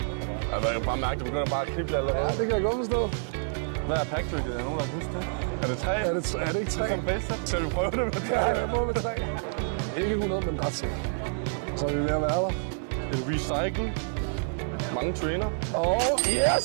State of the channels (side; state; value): left; silent; digital silence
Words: Jeg kan bare mærke, at du begynder bare at knible allerede. Ja, det kan jeg godt forstå. Hvad er packtricket? Er nogen, der kan huske det? Er det 3? Er det ikke 3? Som bedste? Skal vi prøve det med 3? Ja, jeg prøver med 3. Ikke 100, men ret sikkert. Så er vi ved at være der. Et recycle. Mange trainer.